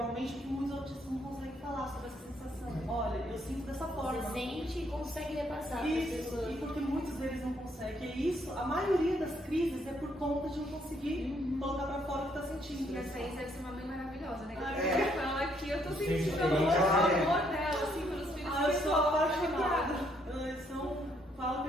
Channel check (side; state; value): both; normal; correlation 0.70